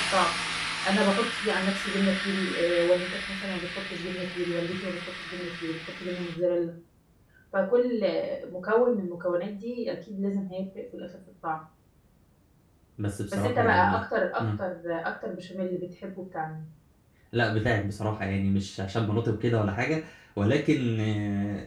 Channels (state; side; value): identical; both; correlation 1.00